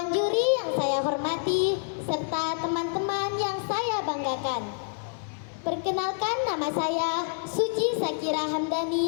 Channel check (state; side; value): silent; right; 60 dB below the other